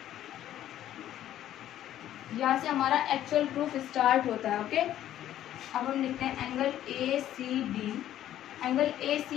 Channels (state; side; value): quieter; right; 12.1 dB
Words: यहाँ से हमारा एक्चुअल प्रूफ स्टार्ट होता है। ओके, अब हम लिखते हैं angle A C D, angle A